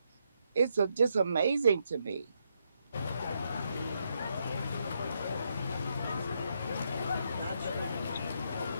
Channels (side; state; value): both; inverted; correlation -0.78